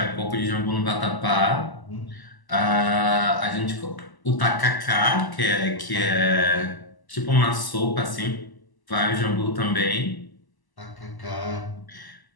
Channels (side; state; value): right; late; 1.0 ms